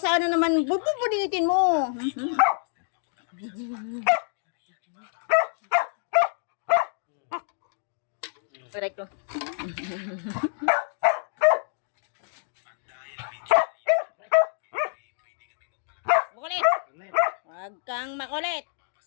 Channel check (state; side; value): silent; right; digital silence